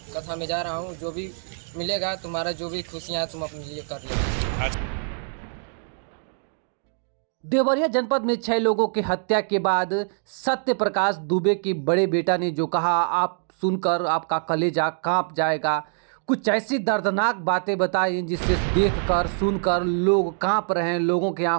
कथा में जा रहा हूँ, जो भी मिलेगा तुम्हारा जो भी खुशियाँ तुम अपने लिए कर लो। देवरिया जनपद में 6 लोगों की हत्या के बाद सत्य प्रकाश दुबे के बड़े बेटा ने जो कहा, आप सुनकर आपका कलेजा कांप जाएगा। कुछ ऐसी दर्दनाक बातें बताई जिससे देखकर सुनकर लोग कांप रहे हैं, लोगों की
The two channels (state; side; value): silent; left; digital silence